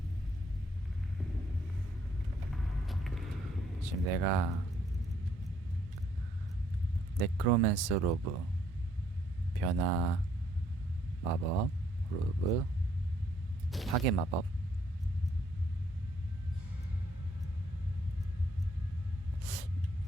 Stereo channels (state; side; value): normal; both; correlation 0.68